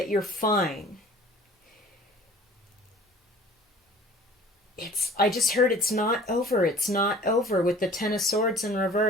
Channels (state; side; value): normal; both; correlation 0.48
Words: you're fine. I just heard it's not over. It's not over with the Ten of Swords in